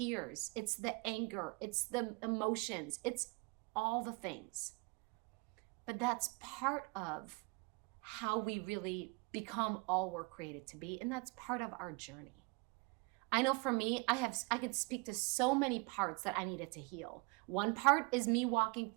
It's the anger. It's the emotions. It's all the things. But that's part of how we really become all we're created to be, and that's part of our journey. I know for me, I could speak to so many parts that I needed to heal. One part is me walking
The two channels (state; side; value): quieter; left; 29.5 dB